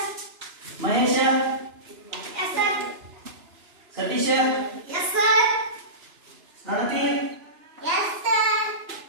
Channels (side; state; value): left; late; 2.9 ms